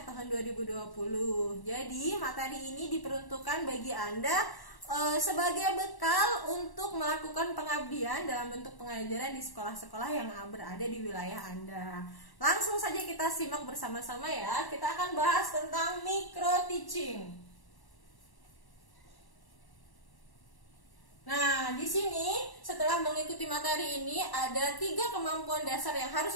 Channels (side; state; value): right; late; 1.1 ms